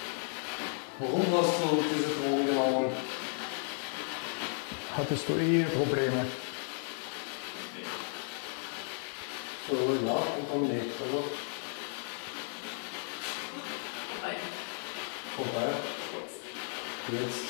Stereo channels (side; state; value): right; silent; 55 dB below the other